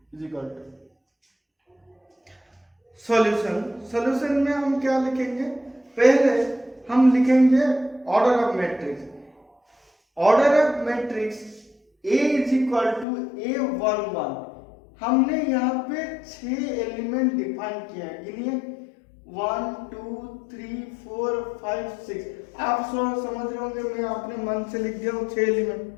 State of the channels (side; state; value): right; drops out; at 13.1 s